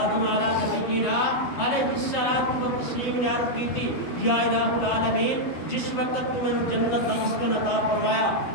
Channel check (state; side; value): late; right; 12 ms